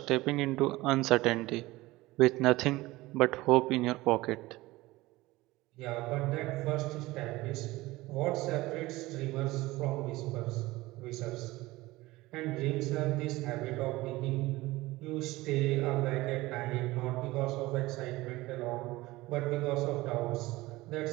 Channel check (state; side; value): quieter; left; 19.4 dB